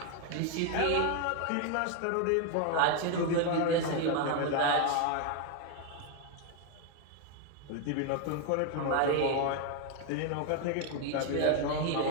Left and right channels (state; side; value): different; both; correlation 0.01